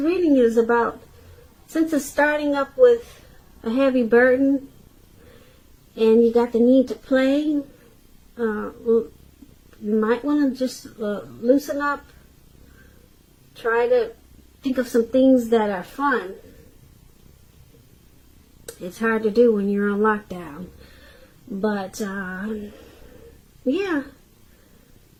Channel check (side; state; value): both; identical; correlation 1.00